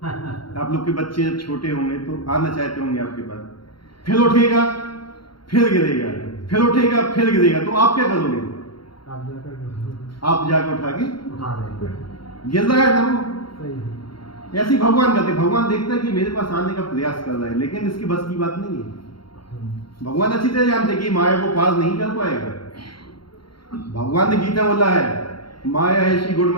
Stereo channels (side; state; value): right; late; 0.73 ms